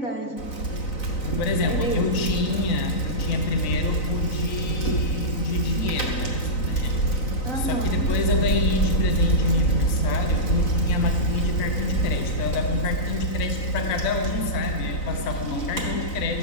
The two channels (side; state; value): right; late; 3.9 ms